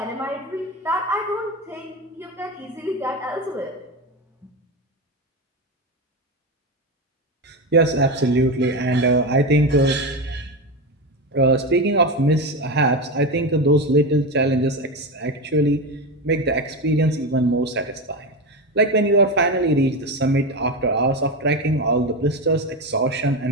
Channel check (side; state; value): both; normal; correlation 0.17